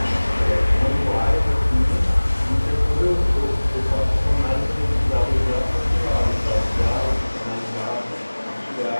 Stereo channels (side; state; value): both; inverted; correlation -1.00